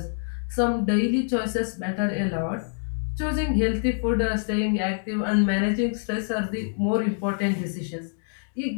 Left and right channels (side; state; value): right; silent; digital silence